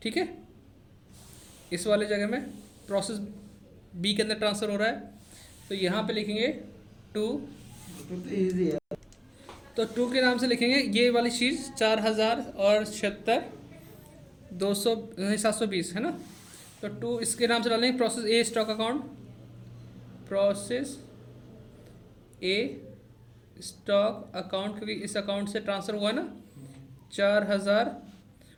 ठीक है, इस वाले जगह में प्रोसेस बी के अंदर ट्रांसफ़र हो रहा है, तो यहाँ पे लिखेंगे 2। तो 2 के नाम से लिखेंगे ये वाली चीज़ 4000 और 720 है ना, तो 2 इसके नाम से डालेंगे प्रोसेस ए स्टॉक अकाउंट। प्रोसेस ए स्टॉक अकाउंट, क्योंकि इस अकाउंट से ट्रांसफ़र हुआ ना 4000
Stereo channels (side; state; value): both; identical; correlation 1.00